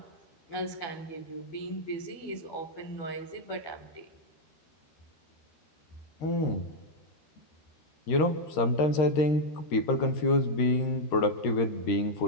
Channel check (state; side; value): late; right; 13 ms